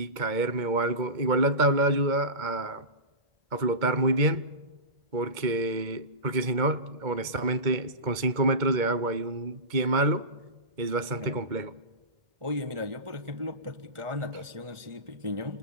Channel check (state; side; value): late; left; 2.1 ms